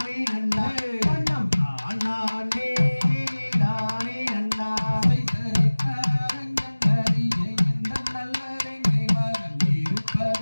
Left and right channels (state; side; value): inverted; both; correlation -1.00